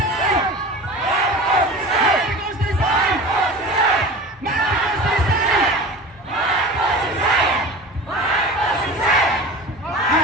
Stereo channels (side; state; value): both; normal; correlation 0.35